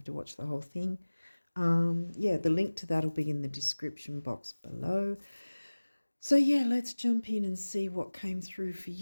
to watch the whole thing. Yeah, the link to that will be in the description box below. So yeah, let's jump in and see what came through for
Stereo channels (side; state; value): both; inverted; correlation -1.00